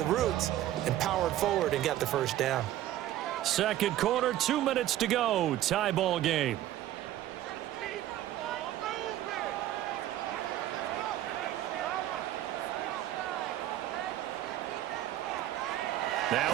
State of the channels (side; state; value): left; quieter; 13.3 dB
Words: roots and powered forward and got the first down. Second quarter, 2 minutes to go. Tie ball game.